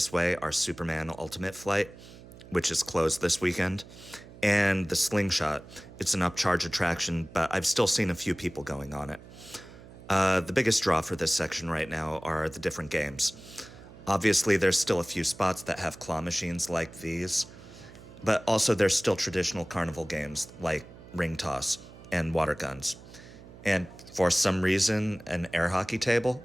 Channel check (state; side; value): noise; right; hum, 18 dB below the sound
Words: way are Superman Ultimate Flight, which is closed this weekend, and the Slingshot. It's an upcharge attraction, but I've still seen a few people going on it. The biggest draw for this section right now are the different games. Obviously, there's still a few spots that have claw machines like these, but also there's still traditional carnival games like ring toss and water guns. And for some reason, an air hockey table